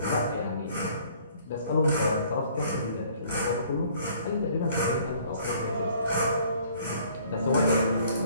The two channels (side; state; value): both; inverted; correlation -0.58